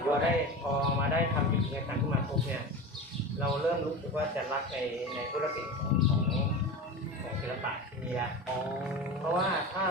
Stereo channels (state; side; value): normal; both; correlation 0.28